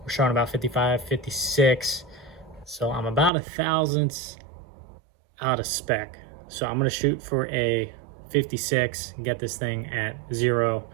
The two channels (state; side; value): drops out; left; at 3.3 s